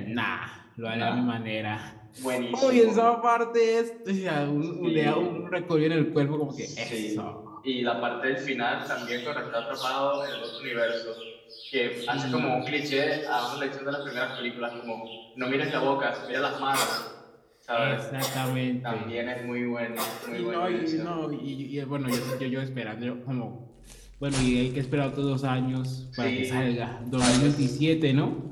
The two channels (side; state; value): both; identical; correlation 1.00